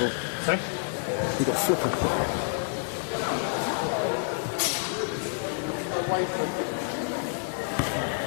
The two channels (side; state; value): right; silent; digital silence